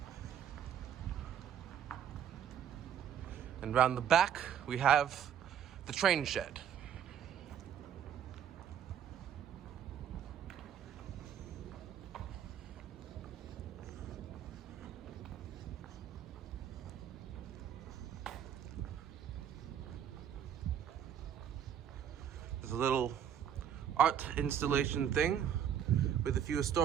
And round the back, we have the train shed. There's a little art installation thing with a few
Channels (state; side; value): quieter; left; 9.2 dB